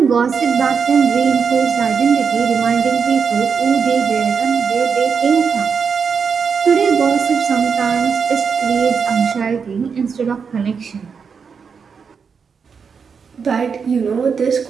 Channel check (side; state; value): left; quieter; 6.0 dB